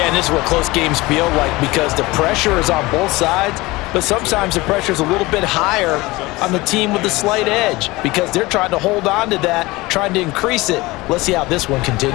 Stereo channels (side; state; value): right; quieter; 21.2 dB